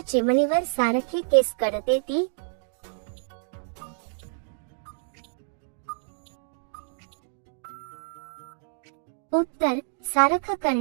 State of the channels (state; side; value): silent; left; digital silence